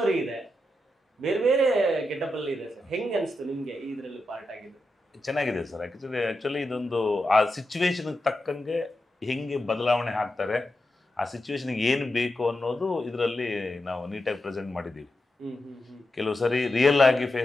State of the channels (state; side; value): normal; both; correlation 0.88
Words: ಇದೆ, ಬೇರೆ ಬೇರೆ ಗೆಟಪಲ್ಲಿ ಇದೆ ಸರ್. ಹೆಂಗೆ ಅನಿಸ್ತು ನಿಮಗೆ ಇದರಲ್ಲಿ ಪಾರ್ಟ್ ಆಗಿದ್ದು? ಚೆನ್ನಾಗಿದೆ ಸರ್. ಆ್ಯಕ್ಚುಲಿ ಇದೊಂದು ಆ ಸಿಚುವೇಶನ್ಗೆ ತಕ್ಕಂಗೆ ಹೆಂಗೆ ಬದಲಾವಣೆ ಆಗ್ತಾರೆ, ಆ ಸಿಚುವೇಶನ್ಗೆ ಏನು ಬೇಕು ಅನ್ನೋದು ಇದರಲ್ಲಿ ನಾವು ನೀಟಾಗಿ ಪ್ರೆಸೆಂಟ್ ಮಾಡಿದ್ದೀವಿ. ಕೆಲವು ಸರಿ ರಿಯಲ್ ಆಗಿ